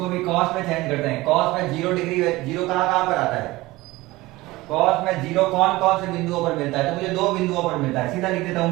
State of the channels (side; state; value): left; quieter; 19.7 dB